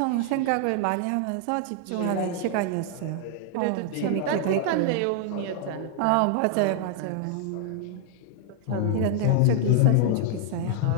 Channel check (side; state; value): both; different; correlation 0.00